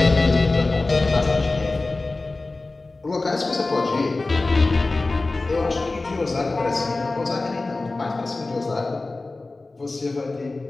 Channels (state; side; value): quieter; right; 3.3 dB